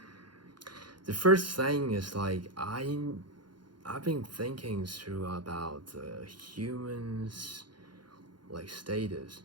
the first thing is I've been thinking through about humans status.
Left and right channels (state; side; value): late; left; 0.71 ms